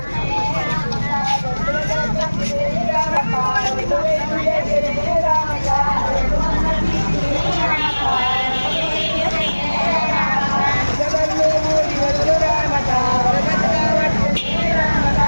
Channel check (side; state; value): both; inverted; correlation -1.00